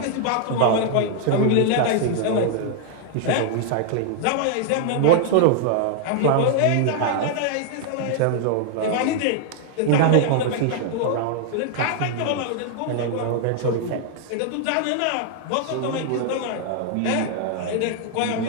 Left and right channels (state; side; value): different; both; correlation 0.00